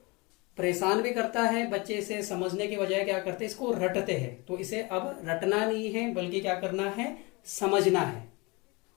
परेशान भी करता है। बच्चे इसे समझने के बजाय क्या करते हैं, इसको रटते हैं। तो इसे अब रटना नहीं है बल्कि क्या करना है, समझना है।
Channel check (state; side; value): quieter; right; 26.6 dB